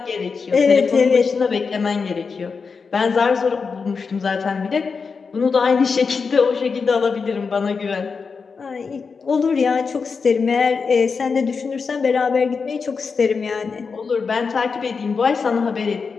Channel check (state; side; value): quieter; right; 5.2 dB